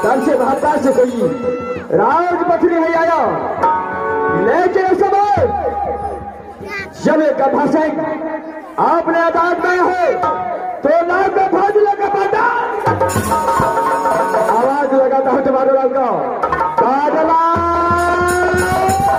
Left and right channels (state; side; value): identical; both; correlation 1.00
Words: तब से महात्मा से कोई राजपथरी नहीं आया। लेकिन इस समय जब एक भाषण आपने अदालत में हो तो नाम का फाजिला का बाटा आवाज लगाता है तुम्हारे लाल का बादला।